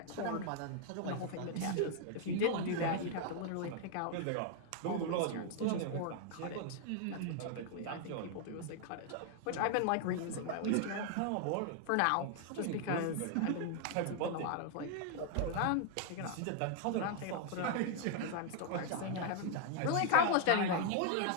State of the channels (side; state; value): both; different; correlation 0.00